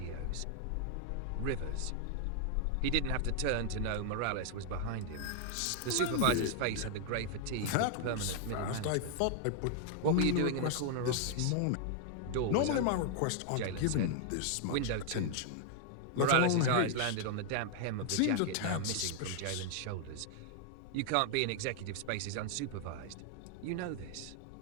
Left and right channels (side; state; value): both; different; correlation 0.00